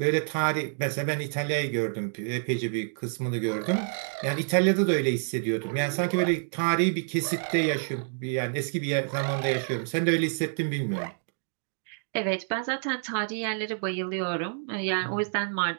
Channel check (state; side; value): silent; left; digital silence